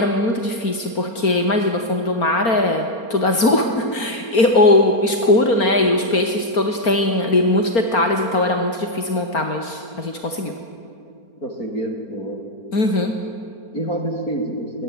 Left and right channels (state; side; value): late; right; 4.4 ms